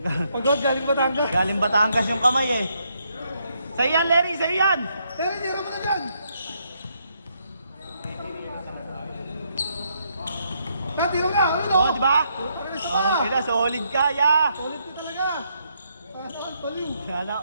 Pagod, galing Batangas. Galing Batangas yung kamay eh. Sa'yo yan, Larry! Sa'yo yan! Pero tira mo na dyan. Tira nga, ano? Oh, di ba? Ano Oh, kaya solid ka, ya! Solid ka talaga. Saan, baliw.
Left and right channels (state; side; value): inverted; both; correlation -0.75